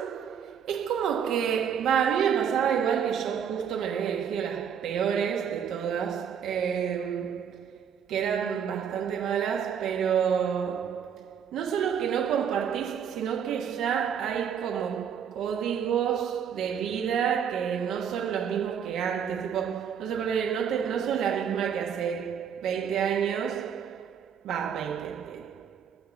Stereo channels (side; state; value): left; quieter; 7.9 dB